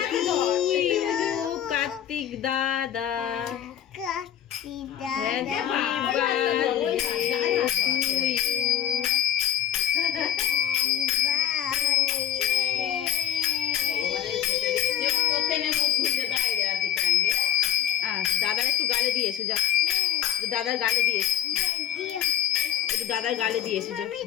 কার্তিক দাদা, দাদার একটু গালে দিয়ে এসো, যা দাদার গালে দিয়ে এসো, একটু দাদার গালে দিয়ে এসো, যা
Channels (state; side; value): quieter; right; 10.9 dB